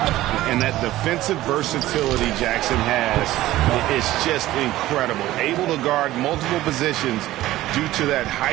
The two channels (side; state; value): left; quieter; 15.7 dB